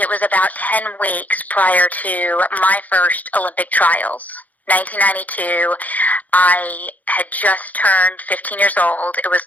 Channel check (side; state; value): right; late; 0.078 ms